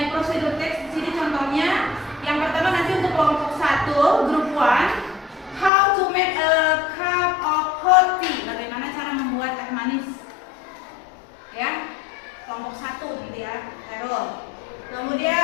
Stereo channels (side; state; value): right; drops out; at 5.7 s